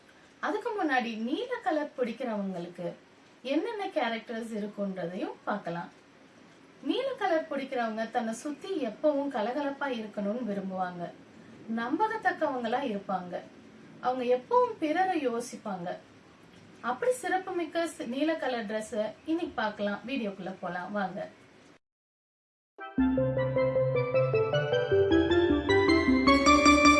அதுக்கு முன்னாடி நீல கலர் பிடிக்கிறவங்களுக்கு என்னென்ன கேரக்டர்ஸ் இருக்குன்றதையும் பார்க்கலாம். நீல கலர் பிடிக்கிறவங்க தன்னை சுத்தி எப்பவும் கலகலப்பா இருக்கணும்னு விரும்புவாங்க. நம்பகத்தக்கவங்களா இருப்பாங்க. அவங்க எப்பவும் பிறரை யோசிப்பாங்க. அப்படி சிறப்புமிக்க நீல கலர் ட்ரெஸ் இன்னைக்கு பார்க்கலாம். வீடியோக்குள்ள போலாம் வாங்க.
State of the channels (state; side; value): identical; both; correlation 1.00